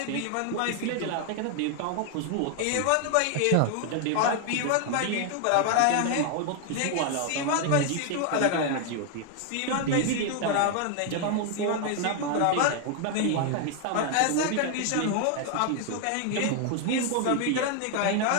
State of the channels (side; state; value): both; different; correlation 0.00